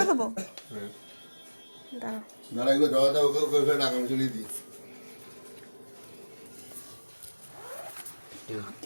দেবো? দাঁড়াও, দাঁড়া, এগুলো জড়াতে ওকে ওকে টাকা আমি চলিয়ে দিই।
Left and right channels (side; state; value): both; inverted; correlation -1.00